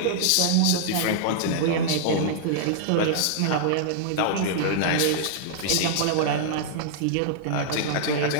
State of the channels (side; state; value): both; different; correlation -0.01